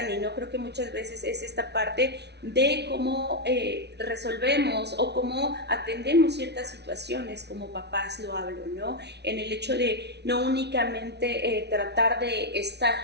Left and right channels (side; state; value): left; late; 0.49 ms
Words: ¿no? Creo que muchas veces es esta parte de cómo resolvemos o cómo atendemos ciertas situaciones, como papás lo hablo, ¿no? En el hecho de no únicamente tratar de estar,